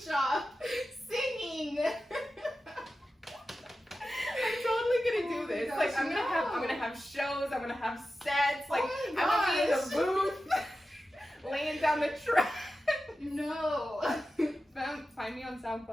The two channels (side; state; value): both; normal; correlation 0.93